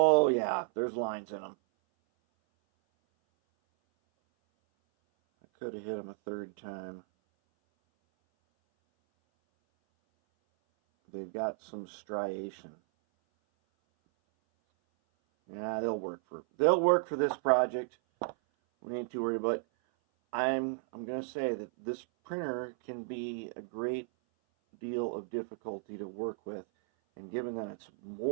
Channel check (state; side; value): silent; left; 55 dB below the other